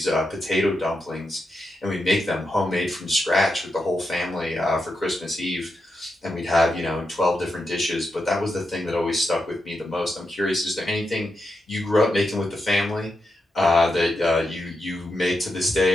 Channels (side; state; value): both; normal; correlation 0.86